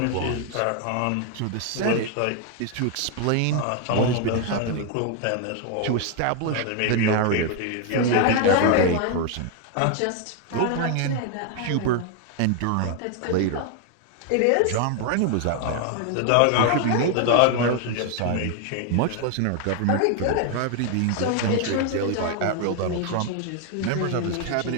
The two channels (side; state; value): both; different; correlation 0.00